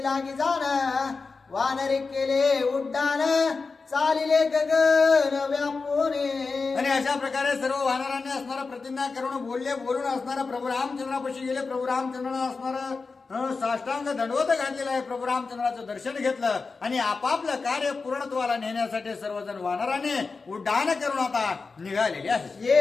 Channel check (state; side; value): quieter; right; 4.3 dB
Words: लागी जाण वानरे केले उड्डाण चालिले गगन व्यापुने. आणि अशा प्रकारे सर्व वानरांनी असणारा प्रतिज्ञा करून बोलून असणारा प्रभू रामचंद्रापाशी गेले. प्रभू रामचंद्रांना असणारा साष्टांग दंडवत घातलेला आहे. प्रभू रामचंद्राचं दर्शन घेतलं आणि आपापलं कार्य पूर्णत्वाला नेण्यासाठी सर्वजण वानराने उड्डाण करून आता निघालेले आहे.